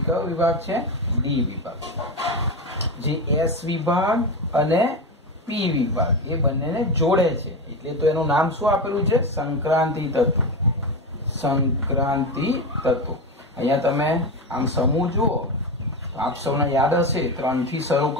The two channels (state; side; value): normal; both; correlation 0.18